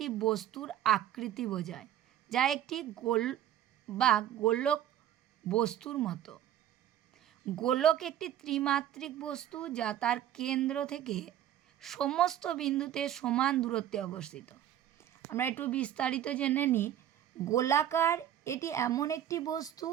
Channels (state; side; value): quieter; left; 11.2 dB